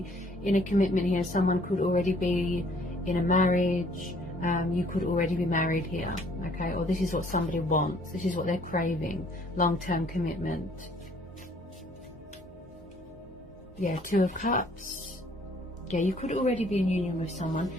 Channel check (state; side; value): normal; both; correlation 0.60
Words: in a commitment here. Someone could already be in a marriage. You could already be married here, okay? Or this is what somebody wants. This is what they're craving. Long-term commitment. Yeah, Two of Cups. Yeah, you could already be in union with someone.